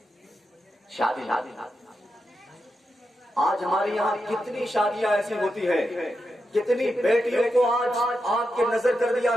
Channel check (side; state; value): both; normal; correlation 0.87